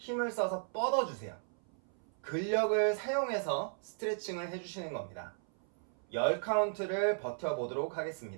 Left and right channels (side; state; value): left; silent; 54 dB below the other